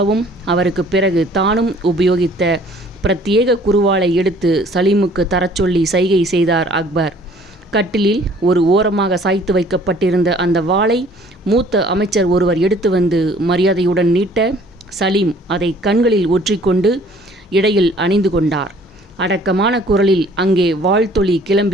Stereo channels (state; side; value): normal; both; correlation 0.55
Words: அவருக்கு பிறகு தானும் உபயோகித்த பிரத்யேக குருவாளை எடுத்து சலீமுக்கு தரச் சொல்லி சைகை செய்தார் அக்பர். கட்டிலில் ஒரு ஓரமாக சாய்த்து வைக்கப்பட்டிருந்த அந்த வாளை மூத்த அமைச்சர் ஒருவர் எடுத்து வந்து மரியாதையுடன் நீட்ட சலீம் அதை கண்களில் ஒற்றிக்கொண்டு இடையில் அணிந்து கொண்டார். அடக்கமான குரலில் அங்கே வாழ்த்தொலி